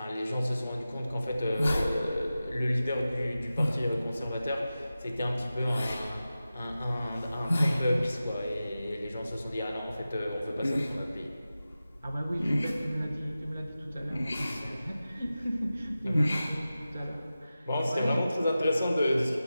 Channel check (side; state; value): both; inverted; correlation -0.94